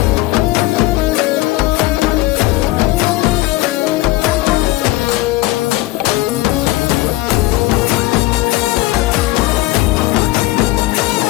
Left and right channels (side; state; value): right; quieter; 18.8 dB